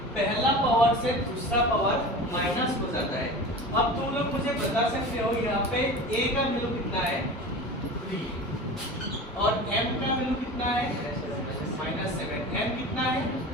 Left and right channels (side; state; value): both; normal; correlation 0.34